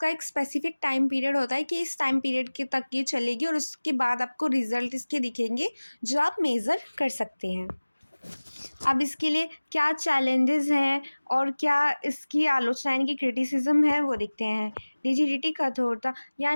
एक स्पेसिफिक टाइम पीरियड होता है कि इस टाइम पीरियड के तक ये चलेगी और उसके बाद आपको रिजल्ट इसके दिखेंगे जो आप मेज़र कर सकते हैं। अब इसके लिए क्या चैलेंजेस हैं और क्या इसकी आलोचना यानी कि क्रिटिसिज्म है वो देखते हैं। रिजिडिटी, कठोरता,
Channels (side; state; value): both; inverted; correlation -1.00